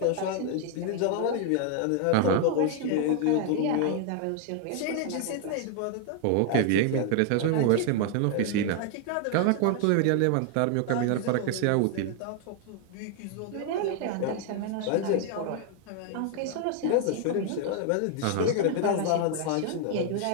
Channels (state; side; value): different; both; correlation 0.00